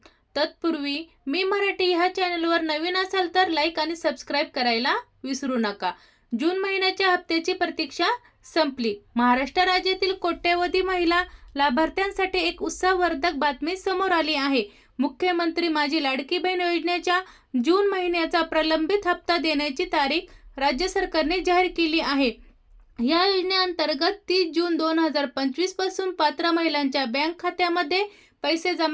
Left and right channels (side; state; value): both; identical; correlation 1.00